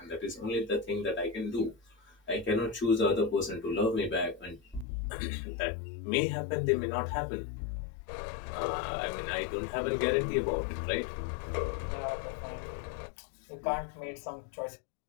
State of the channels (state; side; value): drops out; right; at 4.9 s